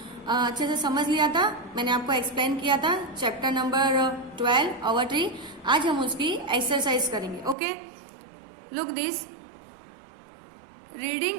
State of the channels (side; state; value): left; drops out; at 7.6 s